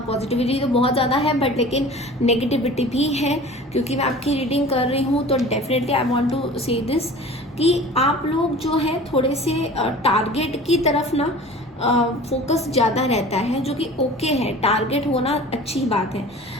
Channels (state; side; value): normal; both; correlation 0.41